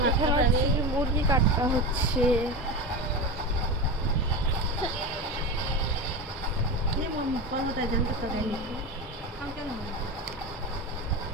মুরগি কাটা হচ্ছে।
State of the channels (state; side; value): normal; both; correlation 0.23